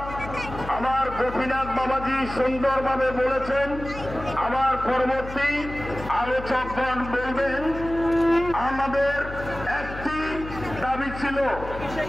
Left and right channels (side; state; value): left; noise; hum, 11 dB below the sound